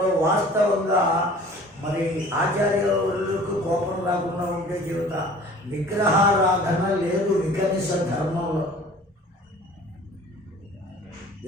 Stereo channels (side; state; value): both; normal; correlation 0.47